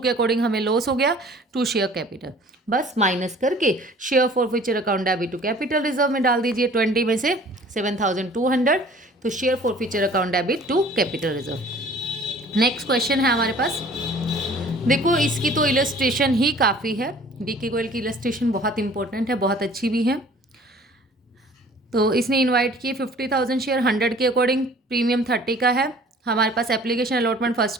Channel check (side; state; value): both; normal; correlation 0.50